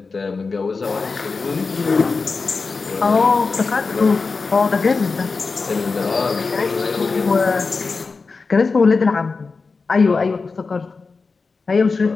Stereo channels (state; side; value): quieter; right; 4.4 dB